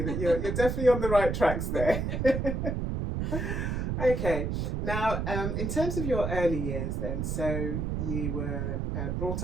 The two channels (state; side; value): noise; right; rumble, 1 dB below the sound